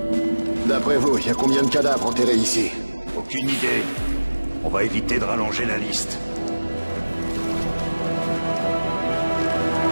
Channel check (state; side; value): inverted; both; correlation -1.00